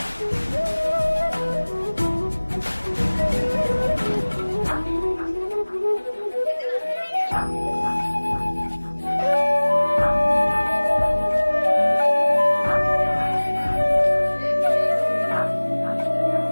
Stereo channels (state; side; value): inverted; both; correlation -1.00